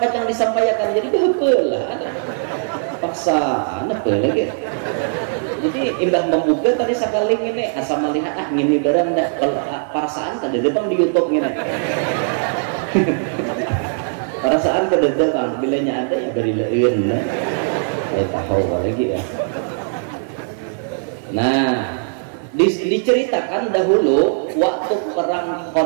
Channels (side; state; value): left; silent; 55 dB below the other